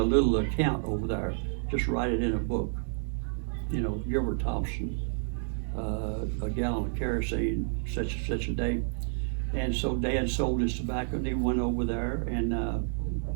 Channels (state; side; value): silent; left; digital silence